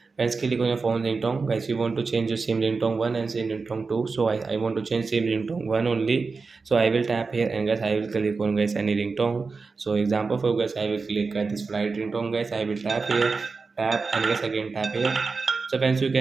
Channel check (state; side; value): quieter; left; 4.4 dB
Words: Guys, click on your phone ringtone. Guys, you want to change your SIM ringtone 1 and SIM ringtone 2. So I want to change SIM ringtone 1 only. So I will tap here and guys I will click on guys any ringtone. So example for guys I will click at this flight ringtone guys. I will tap here, tap and guys again tap here. So friends you